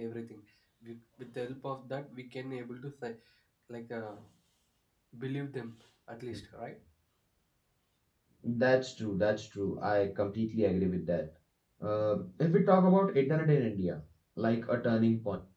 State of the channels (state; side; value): identical; both; correlation 1.00